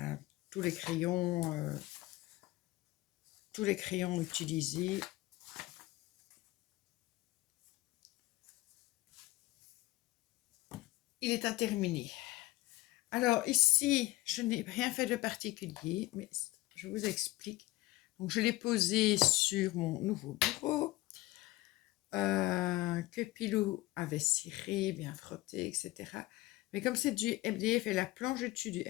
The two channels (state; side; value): quieter; right; 18.5 dB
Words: tous les crayons utilisés. Il est à terminer. Alors ici, je n'ai rien fait de particulier, mais je vous explique. Donc je l'ai posé sur mon nouveau bureau, que Pilou avait ciré, bien frotté, etc. Mais comme c'est du MDF et la planche dessus du